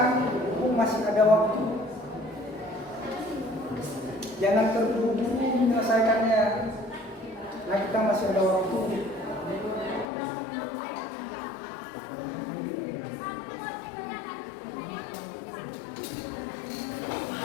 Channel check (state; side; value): drops out; right; at 10.1 s